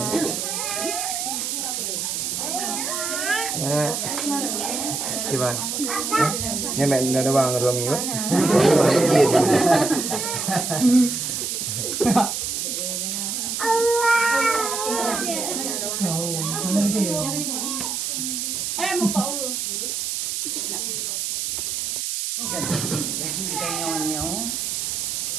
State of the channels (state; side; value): noise; right; hiss, 2 dB below the sound